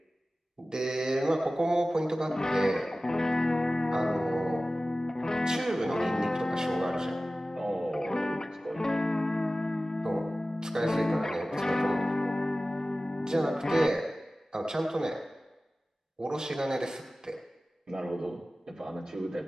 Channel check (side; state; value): both; normal; correlation 0.96